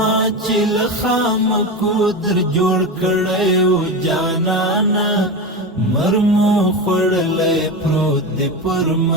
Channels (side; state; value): both; normal; correlation 0.20